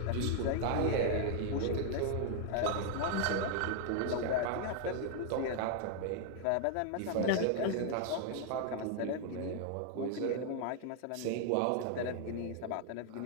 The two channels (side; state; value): both; different; correlation 0.00